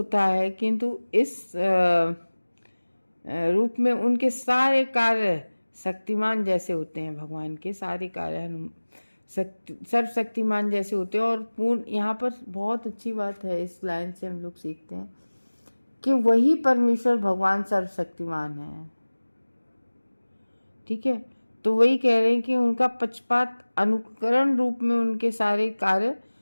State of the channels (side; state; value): both; inverted; correlation -1.00